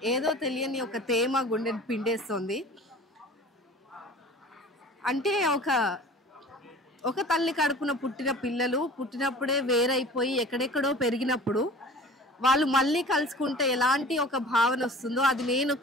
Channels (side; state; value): both; normal; correlation 0.42